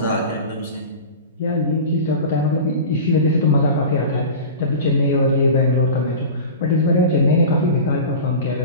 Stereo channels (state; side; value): inverted; both; correlation -0.32